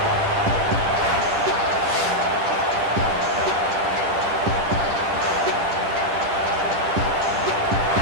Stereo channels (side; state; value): left; late; 10 ms